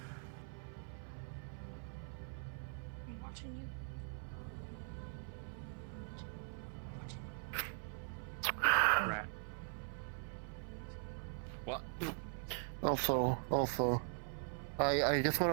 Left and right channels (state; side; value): silent; left; 50 dB below the other